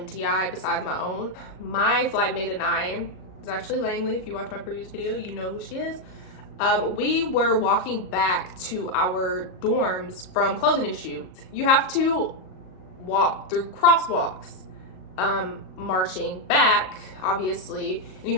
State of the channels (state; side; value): late; right; 38 ms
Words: besides my own. My flight mate and I, it's actually Langley. If you watch my previous video, you know who she is. We were walking back to our dorms from clothing issue. You have to walk through crosswalks, marching back, obviously, and you